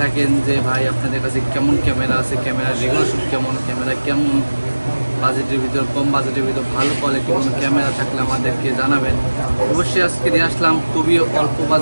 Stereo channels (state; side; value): inverted; both; correlation -1.00